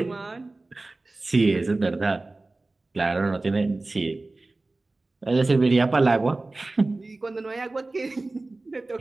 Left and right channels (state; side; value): quieter; left; 3.1 dB